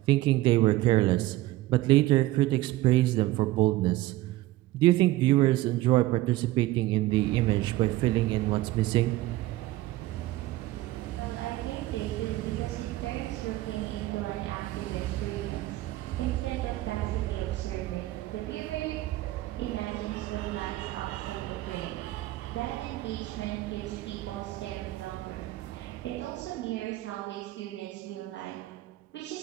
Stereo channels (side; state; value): left; quieter; 17.1 dB